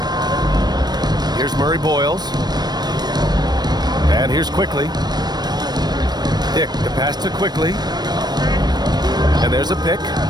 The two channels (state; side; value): late; left; 0.20 ms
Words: Here's Murray Boyles. And here's Quickly. Dick, the pass to Quickly. And there's a pick.